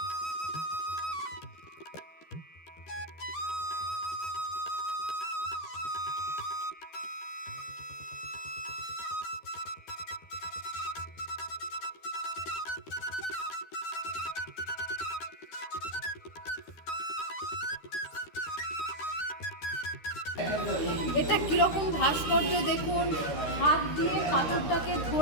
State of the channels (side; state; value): right; late; 13 ms